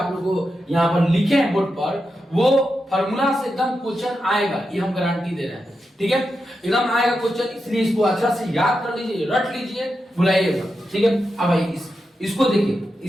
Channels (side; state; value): both; normal; correlation 0.88